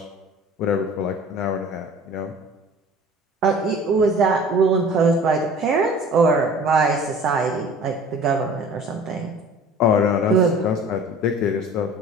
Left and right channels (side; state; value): both; normal; correlation 0.45